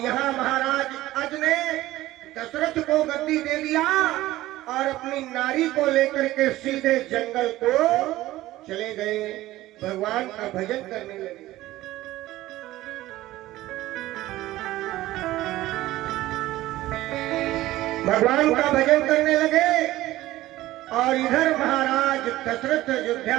महाराज अज ने दशरथ को गद्दी दे दिया और अपनी नारी को लेकर के सीधे जंगल को चले गए, भगवान का भजन करने लगे। भगवान का भजन करने लगे और इधर महाराज दशरथ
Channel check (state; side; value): quieter; left; 16.2 dB